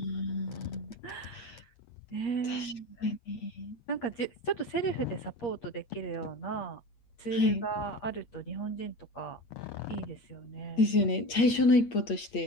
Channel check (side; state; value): right; late; 8.5 ms